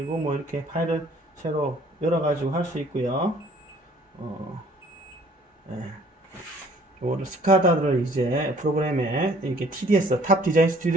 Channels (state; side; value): normal; both; correlation 0.57